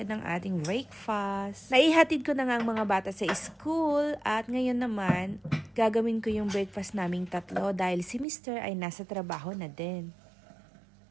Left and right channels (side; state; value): left; drops out; at 8.2 s